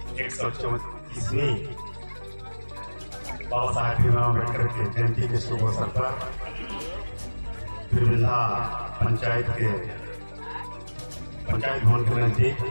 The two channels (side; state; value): both; inverted; correlation -1.00